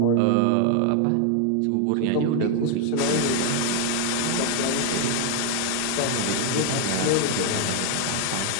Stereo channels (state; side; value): different; both; correlation 0.00